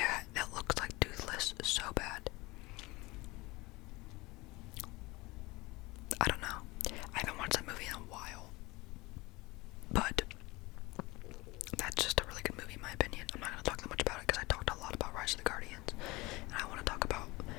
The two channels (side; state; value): right; quieter; 22.4 dB